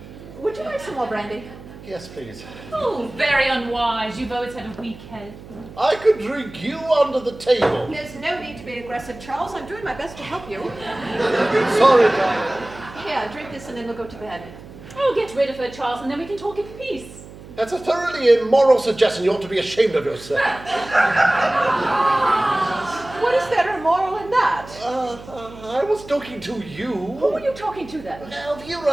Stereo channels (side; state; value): right; noise; hum, 17 dB below the sound